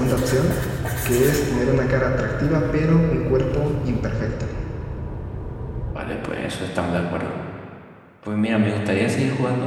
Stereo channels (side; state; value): both; identical; correlation 1.00